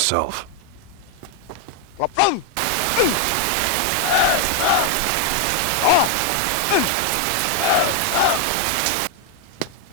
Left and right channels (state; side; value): different; both; correlation 0.01